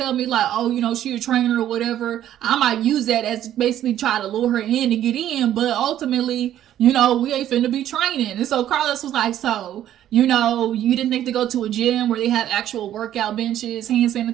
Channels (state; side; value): quieter; left; 11.7 dB